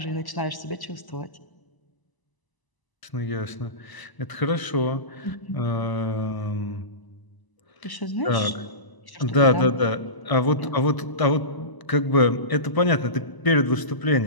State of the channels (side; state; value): right; late; 1.0 ms